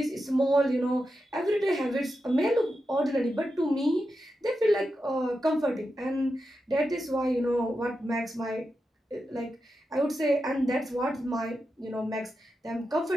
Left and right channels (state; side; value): normal; both; correlation 0.89